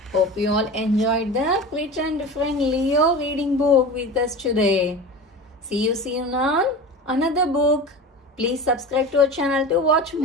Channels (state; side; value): normal; both; correlation 0.31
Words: Hope you all enjoyed the Pretend Friend Leo reading book with us today. See you soon on another book. Please subscribe to our channel to watch